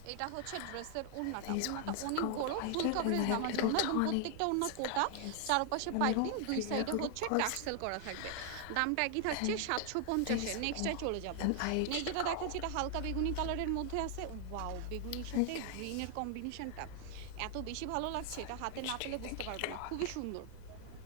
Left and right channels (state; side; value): different; both; correlation 0.00